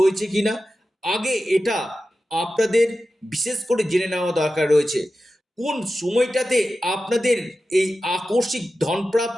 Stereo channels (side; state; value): both; normal; correlation 0.93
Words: কিনা, আগে এটা আপনাদের বিশেষ করে জেনে নেওয়া দরকার রয়েছে। কোন সময়টাতে আপনাদের এই আকস্মিক